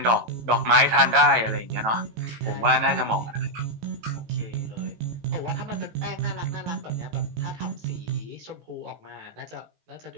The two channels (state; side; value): late; left; 18 ms